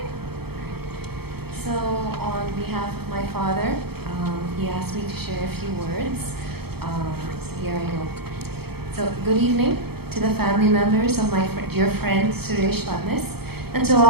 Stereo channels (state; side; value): late; left; 0.96 ms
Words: So, on behalf of my father, he asked me to share a few words. So here I go. So, good evening to the family members of my dear friend Suresh Phadnis, and to